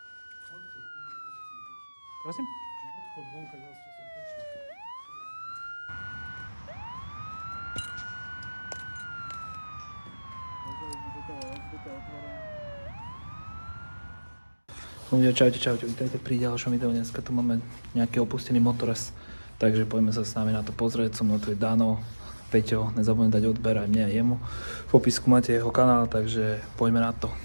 Prosím? Odchod vonka, ja som prešiel. Ľudia, čaute, vítajte pri ďalšom videu. Dneska tu máme nejaký opustený motorez, takže poďme sa s nami na to pozrieť. So mnou tu je Dano, Peťo, nezabudnite dať odber aj mne a jemu. V popisku máte jeho kanál, takže poďme na to,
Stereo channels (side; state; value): both; inverted; correlation -1.00